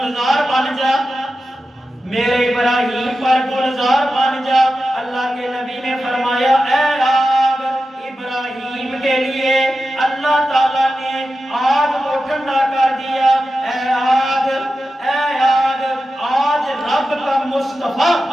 بن جا، میرے ابراہیم پر گلزار بن جا۔ اللہ کے نبی نے فرمایا اے آگ، ابراہیم کے لیے اللہ تعالیٰ نے آگ کو ٹھنڈا کر دیا۔ اے آگ آج رب کا مصطفیٰ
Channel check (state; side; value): normal; both; correlation 0.92